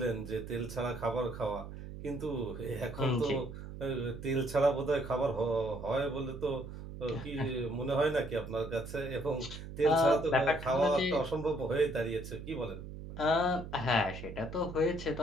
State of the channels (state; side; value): noise; right; hum, 11 dB below the sound